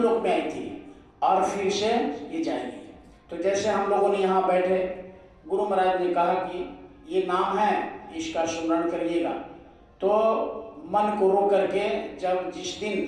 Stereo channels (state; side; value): identical; both; correlation 1.00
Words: में आई थी और फिर से ये जाएगी। तो जैसे हम लोगों ने यहाँ बैठे, गुरु महाराज ने कहा कि ये नाम है, इसका स्मरण करिएगा। तो मन को रोक करके जब जिस दिन